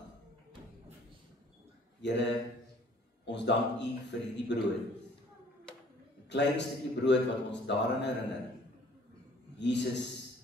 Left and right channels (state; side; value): normal; both; correlation 0.55